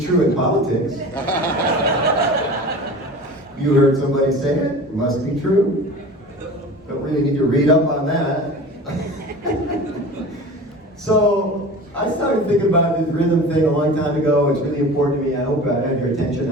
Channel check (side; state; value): both; normal; correlation 0.37